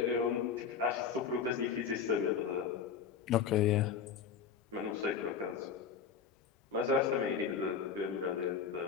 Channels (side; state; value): right; quieter; 6.7 dB